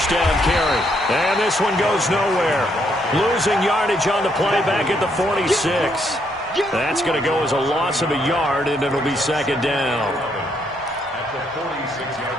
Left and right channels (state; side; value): normal; both; correlation 0.73